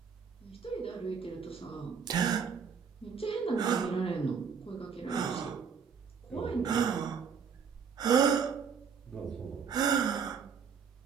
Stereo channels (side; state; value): left; quieter; 6.5 dB